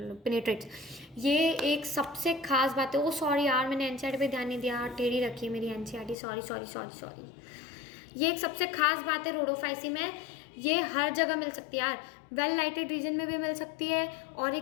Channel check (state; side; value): drops out; right; at 6.2 s